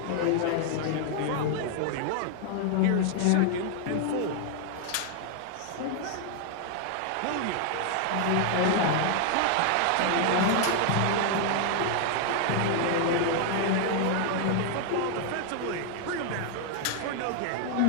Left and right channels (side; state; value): both; different; correlation 0.00